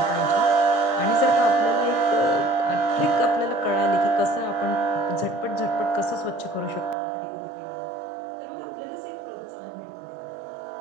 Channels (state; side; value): drops out; left; at 7.0 s